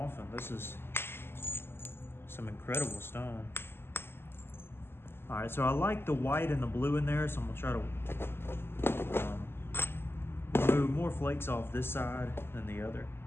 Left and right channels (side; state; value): right; late; 0.11 ms